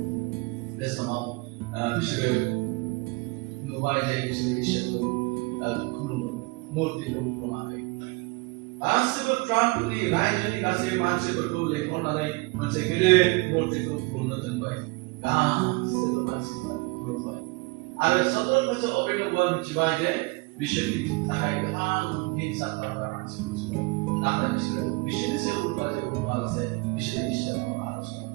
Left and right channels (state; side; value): quieter; left; 26.1 dB